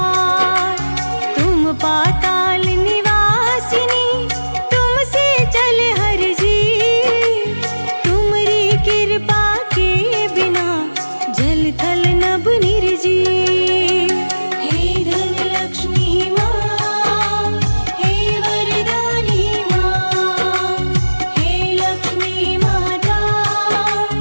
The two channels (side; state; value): both; inverted; correlation -1.00